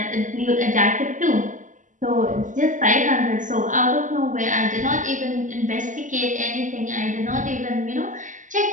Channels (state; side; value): late; left; 0.37 ms